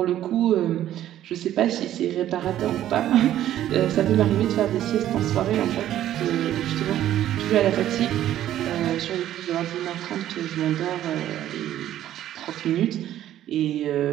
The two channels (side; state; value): left; quieter; 12.3 dB